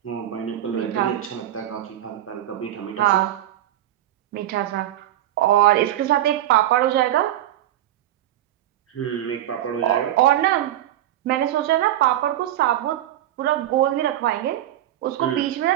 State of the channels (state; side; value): quieter; left; 12.9 dB